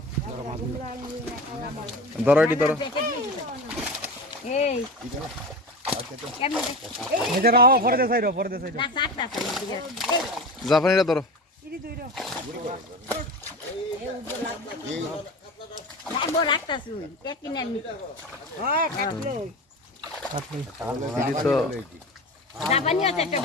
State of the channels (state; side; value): normal; both; correlation 0.29